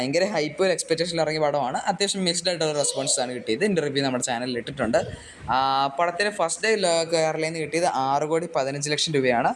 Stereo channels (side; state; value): both; identical; correlation 1.00